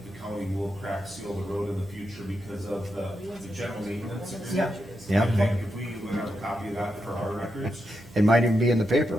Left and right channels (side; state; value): right; noise; hum, 22 dB below the sound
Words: the county will crack seal the road in the future because of the general maintenance agreement. Yeah, I think if we would have a copy of that for our records, it might even be in the paper.